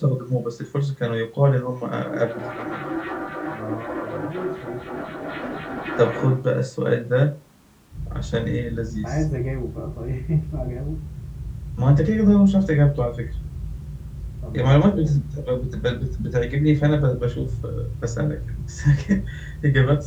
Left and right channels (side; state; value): both; identical; correlation 1.00